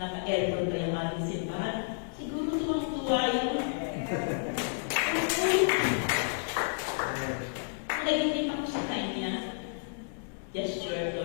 pa yung ating simbahan, siguro tuwang-tuwa yun. Nagiging ako sa kanya, gesture,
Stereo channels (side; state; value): right; silent; digital silence